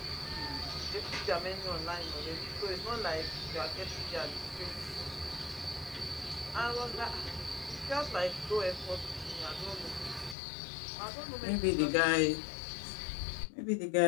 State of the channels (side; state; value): right; drops out; at 10.4 s